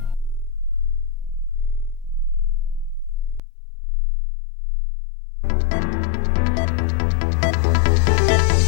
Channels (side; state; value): right; drops out; at 3.4 s